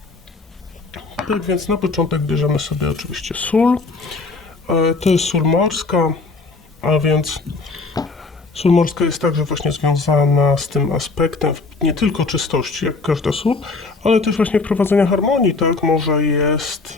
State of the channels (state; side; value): quieter; right; 3.9 dB